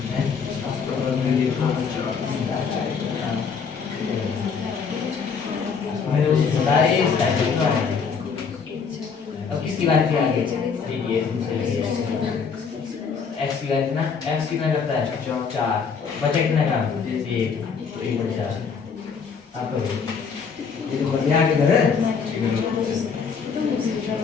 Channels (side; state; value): right; quieter; 5.9 dB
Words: अब किसकी बात की आगे? x की बात ना, x कितना करता है? 4। बचा कितना का? जैसे 1/4। आप ये तो बढ़िया आगे कर